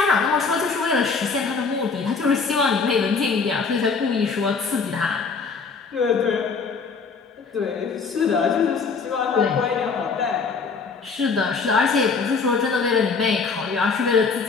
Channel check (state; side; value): quieter; right; 5.0 dB